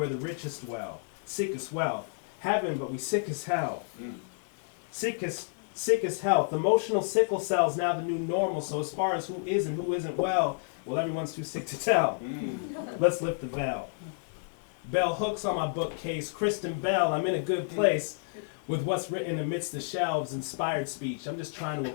the richest dwell, sick as wealth, heaven but we sick as hell. Sick as health. Emotional sickle cells now the new normal. So as far as who is and who isn't well everyone's too sick to tell. Let's lift the veil. Bell hooks on my bookcase. Kirstin Bell, I'm in a good place with what's written amidst the shelves. Inspired speech. I'm just trying to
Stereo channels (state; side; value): silent; right; digital silence